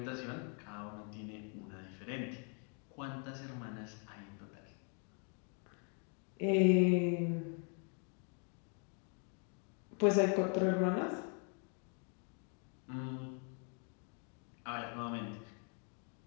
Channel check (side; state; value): right; quieter; 40.0 dB